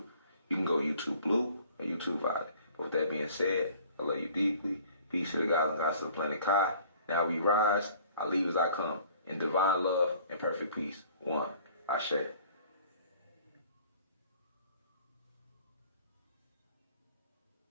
You can go YouTube Blue or YouTube Violet. But with that being said, I love you deeply. Peace to the gods and gods of the planet Kai. Now we rise, I leave as I come, in divine love and perfect peace. One, Ashe.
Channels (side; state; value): both; inverted; correlation -0.52